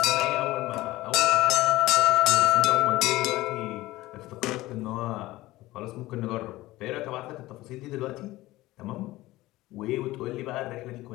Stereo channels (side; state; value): right; quieter; 17.9 dB